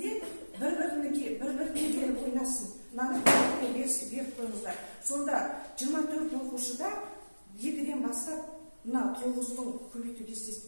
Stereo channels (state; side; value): inverted; both; correlation -1.00